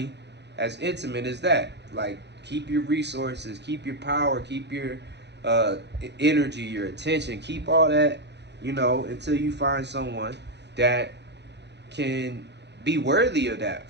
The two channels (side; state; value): left; late; 0.50 ms